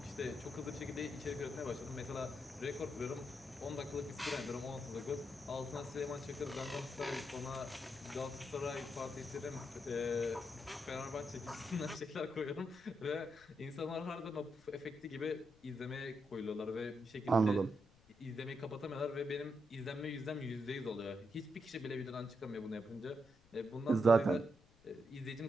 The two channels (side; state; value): left; noise; rumble, 28 dB below the sound